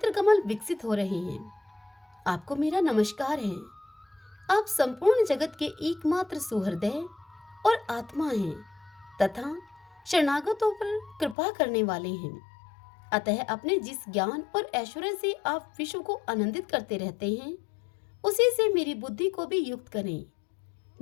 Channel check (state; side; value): drops out; right; at 11.4 s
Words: कमल विकसित हो रहे हैं। आपको मेरा नमस्कार है। आप संपूर्ण जगत के एकमात्र सुहृदय और आत्मा हैं तथा शरणागतों पर कृपा करने वाले हैं। अतः अपने जिस ज्ञान और ऐश्वर्य से आप विश्व को आनंदित करते रहते हैं, उसी से मेरी बुद्धि को भी युक्त करें,